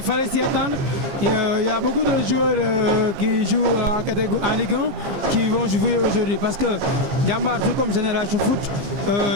fallait s'y attendre. Il y a beaucoup de joueurs qui jouent en Ligue 1 qui vont jouer aujourd'hui. Parce que Djambar, tout comme Génération Foot,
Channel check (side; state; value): left; late; 15 ms